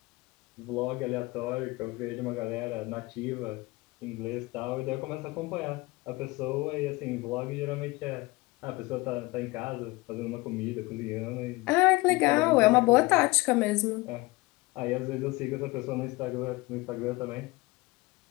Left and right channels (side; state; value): right; quieter; 22.6 dB